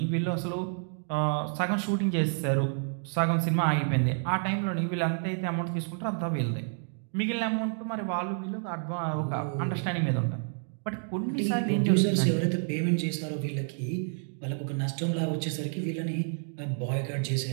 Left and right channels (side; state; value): left; silent; 58 dB below the other